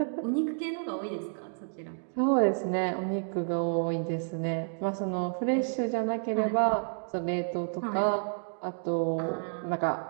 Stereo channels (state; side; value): silent; left; digital silence